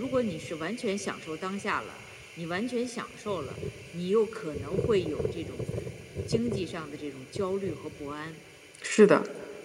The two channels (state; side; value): identical; both; correlation 1.00